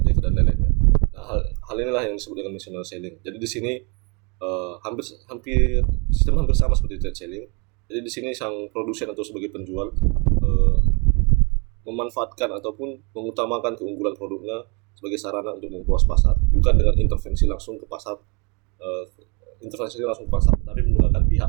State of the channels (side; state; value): left; quieter; 31.6 dB